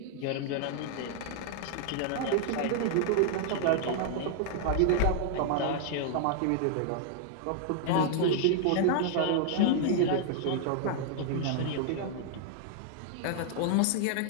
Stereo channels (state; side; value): different; both; correlation 0.00